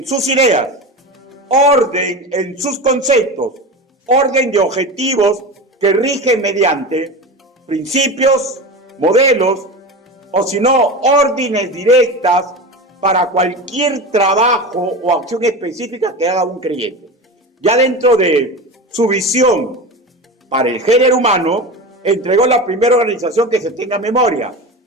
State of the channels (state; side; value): normal; both; correlation 0.26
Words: sus ideas, orden en sus conceptos, orden de objetivos que rigen mediante principios, modelos, o si no, órdenes directas para cualquier trabajo o acción específica que haga un creyente. Ya dentro de su visión para el género humano, entregó la primera organización que se tenga memoria,